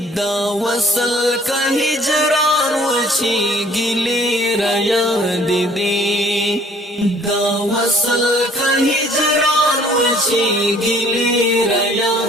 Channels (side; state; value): both; normal; correlation 0.56